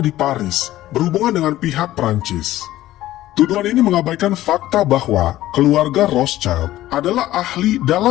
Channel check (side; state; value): right; quieter; 14.9 dB